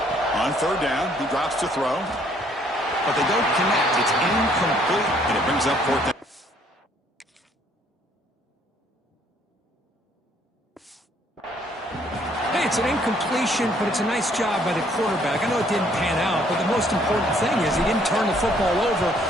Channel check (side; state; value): both; normal; correlation 0.64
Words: On 3rd down, he drops to throw. But they don't connect. It's incomplete, and it brings up 4th down. It's an incompletion, but it's a nice job by the quarterback. I know it didn't pan out, but the most important thing is he didn't turn the football over